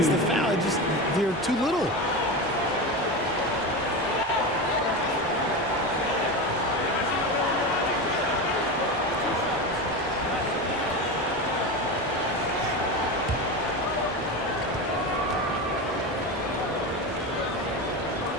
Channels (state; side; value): normal; both; correlation 0.21